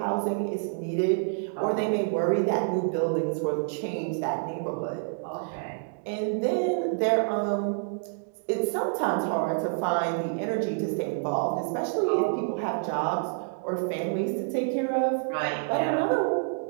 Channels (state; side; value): silent; left; digital silence